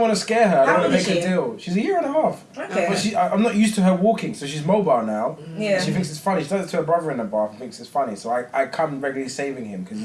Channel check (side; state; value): both; identical; correlation 1.00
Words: to scare her. I How don't want old to is make a she? deal. She's a year and a half. Okay. But I'm not used to her walking, so she's mobile now. Yeah. She thinks it's funny. She does it to her brother in the bath and thinks it's funny. So I come regularly saving him because